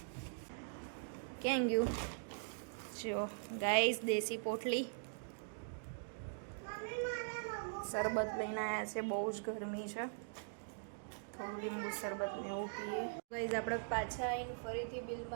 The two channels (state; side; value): silent; left; digital silence